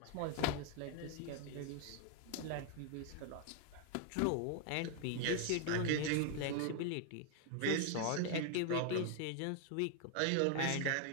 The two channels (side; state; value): both; different; correlation 0.00